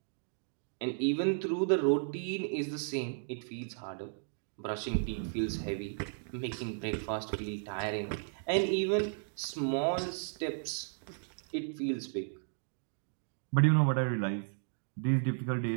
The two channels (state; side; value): silent; left; digital silence